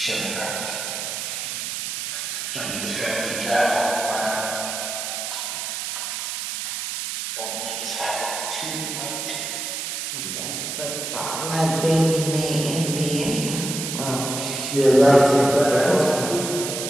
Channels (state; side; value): noise; right; hiss, 4 dB below the sound